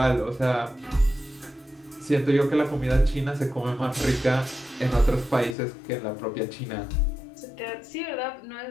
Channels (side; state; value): right; drops out; at 5.6 s